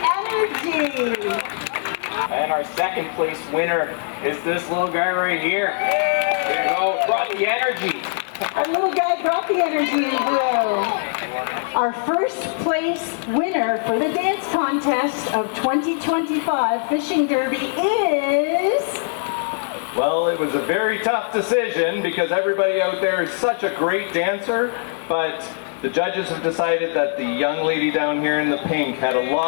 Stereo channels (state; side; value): silent; right; digital silence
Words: energy. And our 2nd place winner is this little guy right here. There you go. Brought the energy. Our little guy brought the energy in blue. Our 1st place winner for the dance contest of 2025 Fishing Derby is... Well, it was a very tough decision because everybody out there is such a great dancer, but the judges have decided that the young lady down here in the pink had a